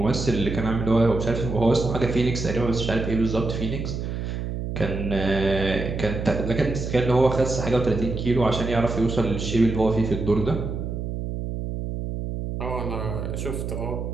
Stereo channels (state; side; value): noise; right; hum, 4 dB below the sound